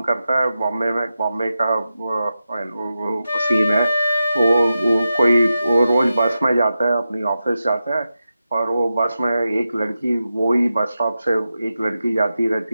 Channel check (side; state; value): both; inverted; correlation -0.91